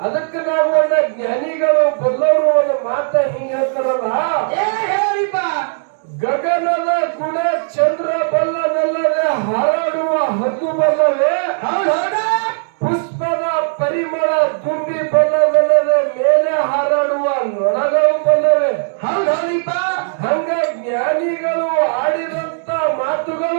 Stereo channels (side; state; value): left; silent; digital silence